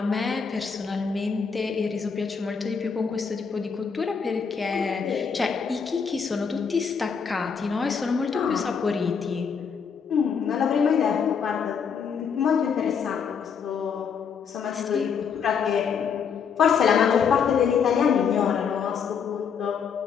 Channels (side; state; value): right; quieter; 6.4 dB